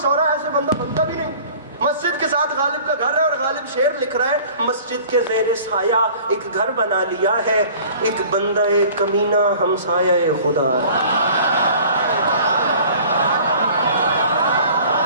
ایسے بندہ بنتا بھی نہیں. مسجد کے ساتھ غالب کا گھر ہے, اور غالب شعر لکھ رہا ہے, مسجد کے زیر سایہ ایک گھر بنا لیا ہے, ایک بندہ کمینہ ہمسایہ خدا.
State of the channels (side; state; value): both; inverted; correlation -0.47